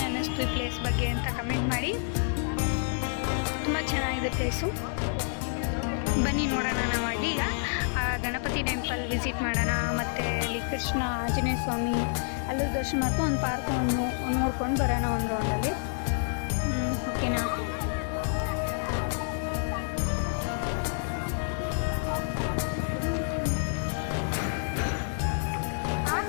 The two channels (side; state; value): right; silent; 59 dB below the other